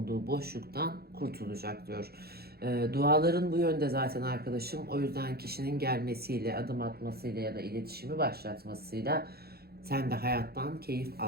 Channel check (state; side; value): late; left; 0.46 ms